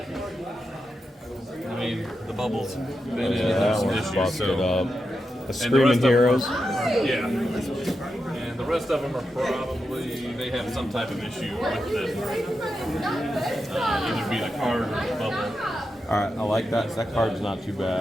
I mean, the bubbles been in. Yeah, There's some one's issues. busted So. up. The Screaming Heroes. Yeah. And the rest of them are probably they have some type of issue with them. Either be the card or the bubble. All right, I like that. That card's not too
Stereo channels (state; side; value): normal; both; correlation 0.88